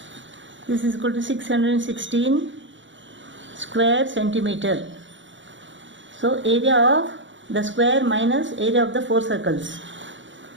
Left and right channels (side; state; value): left; late; 0.55 ms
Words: This is equal to 616 square centimeter. So area of the square minus area of the 4 circles